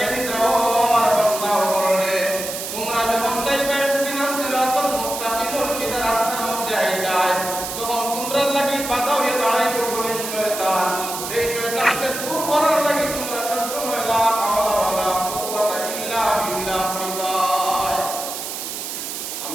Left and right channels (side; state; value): right; noise; hiss, 6 dB below the sound